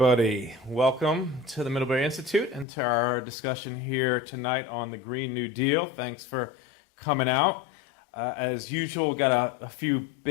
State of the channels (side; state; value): right; drops out; at 2.7 s